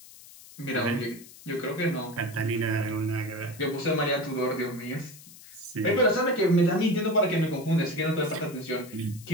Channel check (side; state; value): left; noise; hiss, 19 dB below the sound